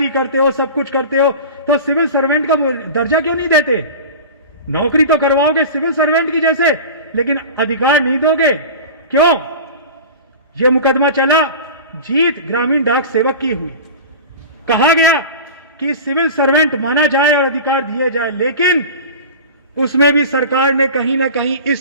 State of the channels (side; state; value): both; inverted; correlation -0.33